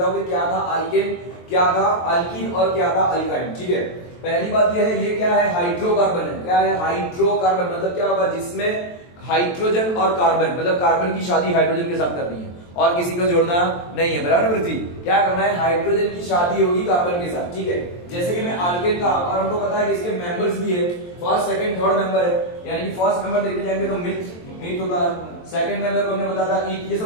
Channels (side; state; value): right; late; 23 ms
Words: हूं कि क्या था अल्केन, क्या था अल्कीन और क्या था अल्काइन, ठीक है। पहली बात ये है, ये क्या है, हाइड्रोकार्बन है। क्या है हाइड्रोकार्बन, मतलब क्या होगा, जिसमें हाइड्रोजन और कार्बन, मतलब कार्बन की शादी हाइड्रोजन के साथ करनी है और किसी को जोड़ना नहीं है, बराबर पृथ्वी। क्या करना है, हाइड्रोजन की शादी होगी कार्बन के साथ, ठीक है। जैसे कि मैं अल्केन का, और हमको पता है कि इसके मेंबर्स भी है, फर्स्ट सेकंड थर्ड मेंबर है, यानी कि फर्स्ट मेंबर देखने जाएंगे तो मिथ होता है, सेकंड मेंबर को हमने बताया था ईथ, ये सब